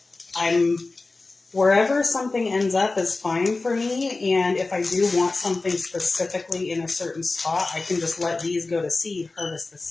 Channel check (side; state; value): right; quieter; 3.5 dB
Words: wherever something ends up is fine for me, and if I do want something specifically in a certain spot, I can just let these go to seed, harvest the